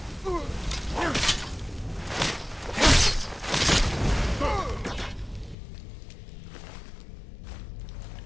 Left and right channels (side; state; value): right; drops out; at 5.6 s